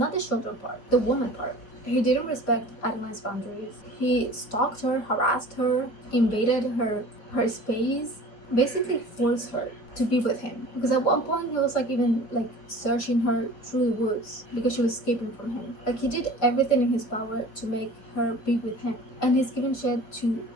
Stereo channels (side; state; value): right; late; 4.9 ms